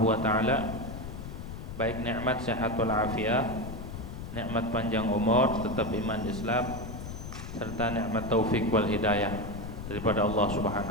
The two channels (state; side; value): noise; left; rumble, 9 dB below the sound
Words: wa taala, baik nikmat sehat wal afiah, nikmat panjang umur, tetap iman Islam, serta nikmat taufik wal hidayah daripada Allah